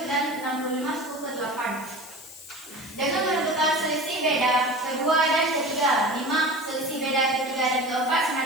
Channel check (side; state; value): left; noise; hiss, 17 dB below the sound